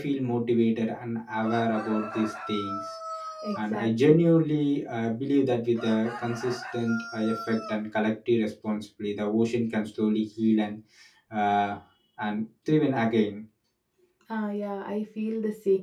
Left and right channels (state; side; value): identical; both; correlation 1.00